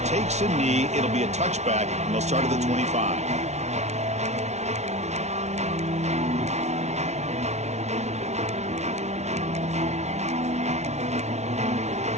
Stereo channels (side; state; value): left; late; 0.32 ms